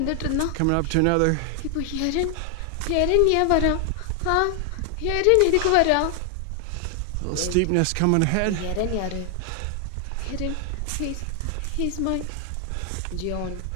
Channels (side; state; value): both; different; correlation 0.00